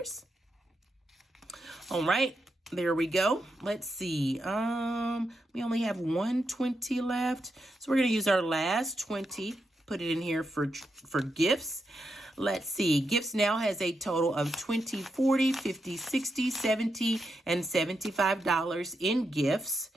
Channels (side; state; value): both; normal; correlation 0.84